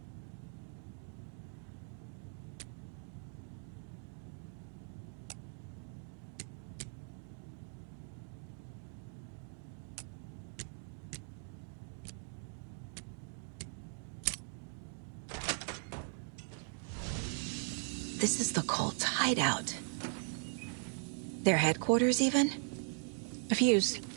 This is the cult's hideout. Their headquarters, even? A fuse.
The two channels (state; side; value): silent; left; 51 dB below the other